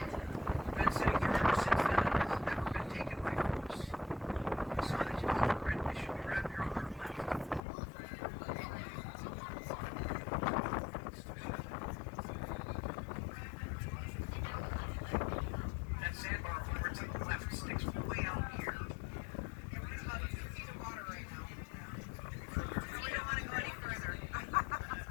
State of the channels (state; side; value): drops out; right; at 7.6 s